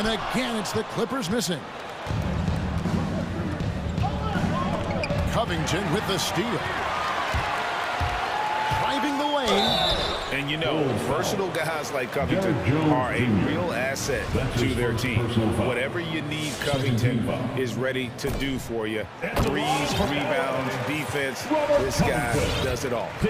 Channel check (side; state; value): both; identical; correlation 1.00